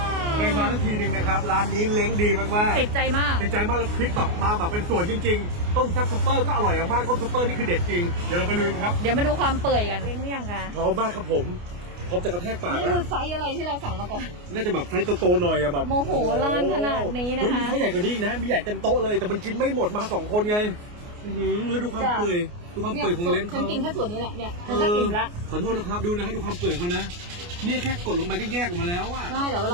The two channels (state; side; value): late; left; 29 ms